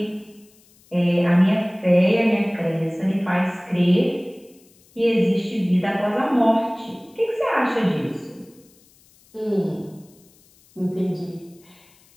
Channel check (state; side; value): noise; left; hiss, 30 dB below the sound